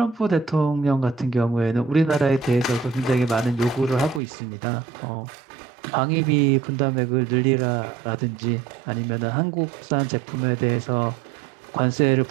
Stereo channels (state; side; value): drops out; left; at 4.2 s